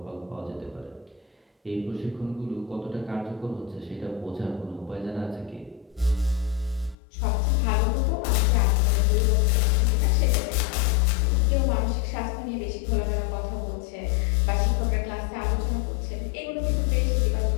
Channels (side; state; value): right; drops out; at 7.0 s